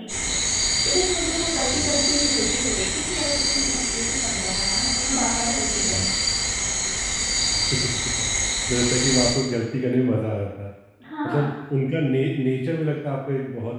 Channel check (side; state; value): both; identical; correlation 1.00